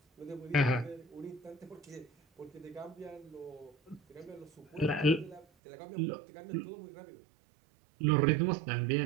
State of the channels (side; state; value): left; drops out; at 5.5 s